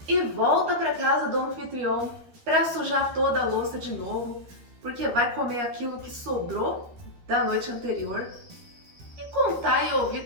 e volta para casa do anfitrião para sujar toda a louça de novo, porque vai comer aquilo que sobrou da noite anterior e contar e ouvir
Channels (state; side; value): late; left; 13 ms